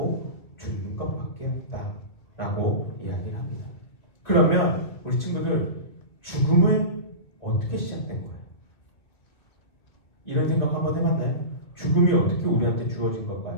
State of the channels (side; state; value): right; late; 2.0 ms